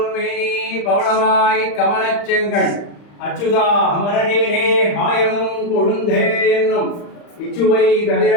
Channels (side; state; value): right; late; 35 ms